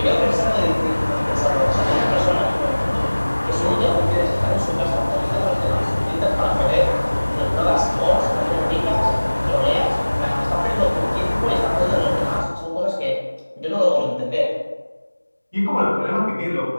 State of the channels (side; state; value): both; inverted; correlation -1.00